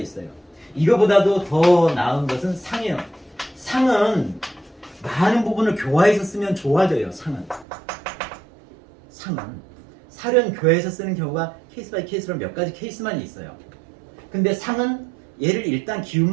이거보다도 더 나은 것은 상이에요. 상은 많은 부분을 교화해서 쓰면 좋아져요. 상은. 살은 교화해서 쓰는 경우가 케이스 바이 케이스로 몇 가지 케이스만 있어요. 근데 상은 얘를 일단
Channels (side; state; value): left; drops out; at 7.7 s